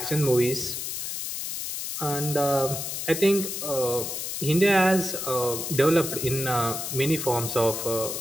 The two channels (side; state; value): left; noise; hiss, 4 dB below the sound